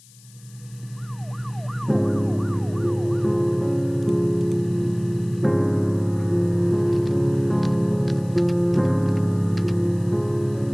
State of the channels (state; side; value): noise; left; hiss, 25 dB below the sound